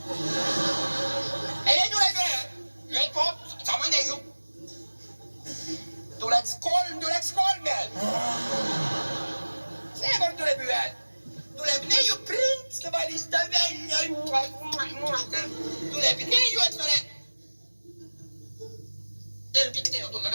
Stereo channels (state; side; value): inverted; both; correlation -1.00